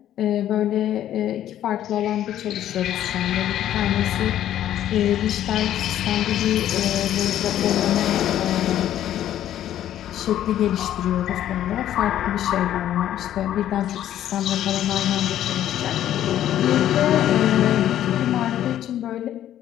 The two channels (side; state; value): right; quieter; 11.7 dB